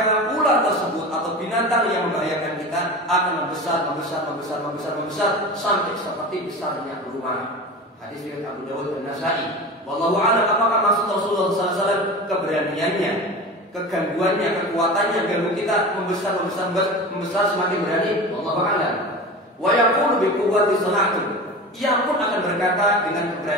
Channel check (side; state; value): both; normal; correlation 0.31